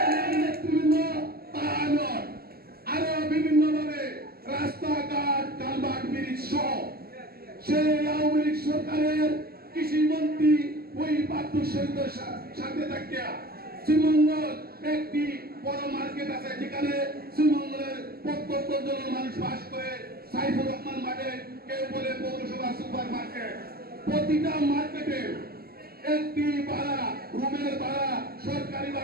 আরো বিভিন্ন ভাবে রাস্তাঘাট কালভার্ট ব্রিজ সহ সেই আওয়ামী লীগ সরকারের কৃষি মন্ত্রী ওই বাদ্যুর সাথে থাকিয়া শ্রীমঙ্গল একটি বড় মার্কেট আছে, যেখানে শ্রীমঙ্গলের প্রত্যন্ত জন মানুষ বাস করে। সাইফুর রহমান মার্কেট, কেউ বলে পৌরসভা সুপার মার্কেট, প্রতিটা মার্কেটে একটি ভাড়া রুমের ভাড়া সরকারি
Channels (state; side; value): late; left; 0.45 ms